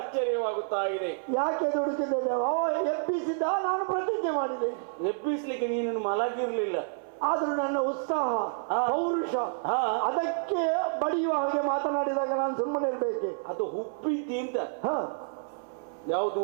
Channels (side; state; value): left; silent; 58 dB below the other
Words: ಇದೆ. ಯಾಕೆ ದುಡುಕಿದ್ದೇನೆ? ಎಬ್ಬಿಸಿದ್ದ, ನಾನು ಪ್ರತಿಜ್ಞೆ ಮಾಡಿದೆ. ಎಬ್ಬಿಸ್ಲಿಕ್ಕೆ ನೀನು ಮಲಗಿರ್ಲಿಲ್ಲ, ಆದ್ರೂ ನನ್ನ ಉತ್ಸಾಹ ಪೌರುಷ ಅದಕ್ಕೆ ಬಡಿಯುವ ಹಾಗೆ ಮಾತನಾಡಿದಾಗ ನಾನು ಸುಮ್ಮನೆ ಇರ್ಬೇಕೆ? ಅದು ಹುಬ್ಬಿದ್ದಿ ಅಂತ. ಯಾವುದು